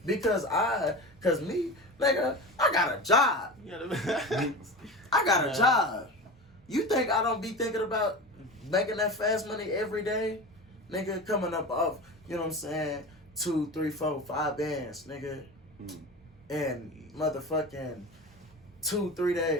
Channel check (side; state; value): both; normal; correlation 0.29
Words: Because me, nigga, I got a job. You got a message? I got a job. You think I don't be thinking about making that fast money every day? Nigga, coming up off, you know what I'm saying, 2, 3, 4, 5 bands, nigga. In motherfucking 2, 3